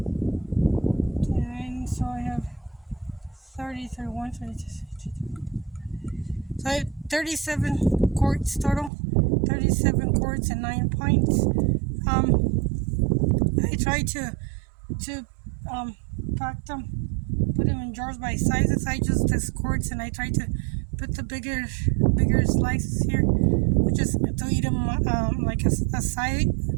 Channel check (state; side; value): drops out; left; at 8.9 s